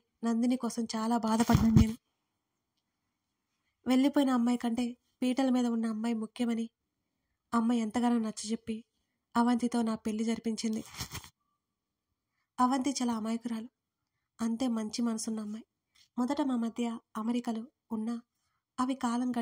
నందిని కోసం చాలా బాధపడ్డాను నేను. వెళ్ళిపోయిన అమ్మాయి కంటే పీటల మీద ఉన్న అమ్మాయి ముఖ్యమని అమ్మ ఎంతగానో నచ్చజెప్పి అవంతితో నా పెళ్లి జరిపించింది. అవంతి చాలా అమాయకురాలు, అంతే మంచి మనసున్న అమ్మాయి. మొదట మా మధ్య అమెరికలు ఉన్నా అవి కాలం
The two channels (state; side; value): identical; both; correlation 1.00